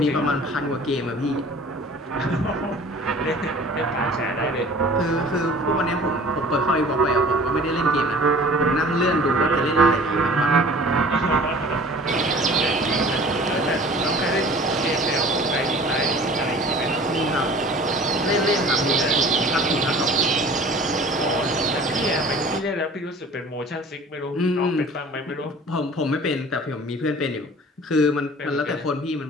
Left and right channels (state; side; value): normal; both; correlation 0.46